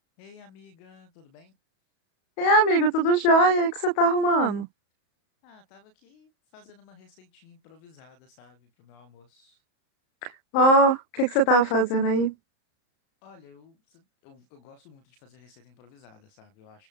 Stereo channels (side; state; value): right; late; 34 ms